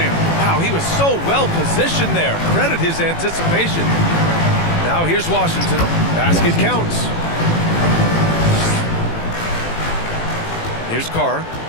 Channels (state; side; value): late; right; 18 ms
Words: Wow, he was so well positioned there. Credit his anticipation. Now here's Washington. Basket counts. Here's Carr.